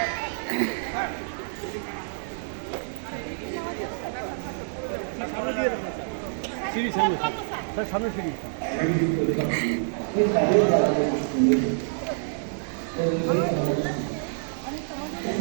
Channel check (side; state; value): left; silent; digital silence